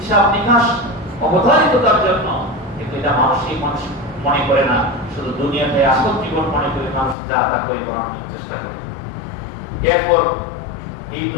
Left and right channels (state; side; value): drops out; right; at 7.2 s